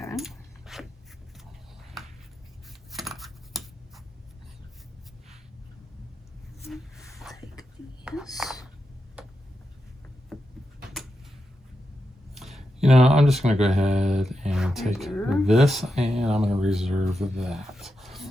Take these. You know, I'm just going to go ahead and take this, and I'm going to reserve that.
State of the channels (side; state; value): both; normal; correlation 0.87